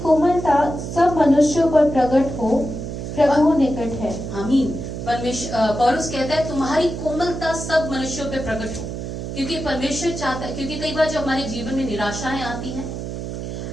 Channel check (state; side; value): noise; right; hum, 6 dB below the sound